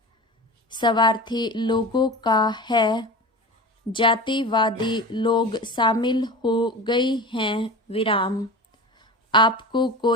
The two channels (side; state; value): both; normal; correlation 0.31